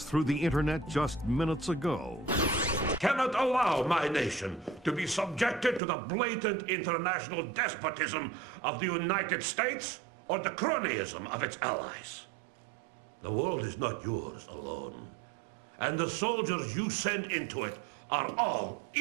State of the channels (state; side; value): drops out; left; at 5.8 s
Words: through the internet just minutes ago. Cannot allow my nation to be subjected to the blatant international despotism of the United States or the cronyism of its allies. The world is not yours alone, and the soldiers you send into it are all